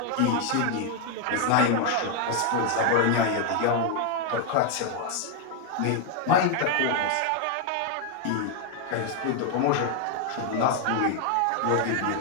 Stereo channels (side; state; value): both; different; correlation 0.01